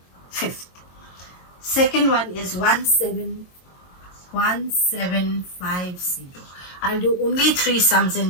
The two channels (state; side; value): late; right; 22 ms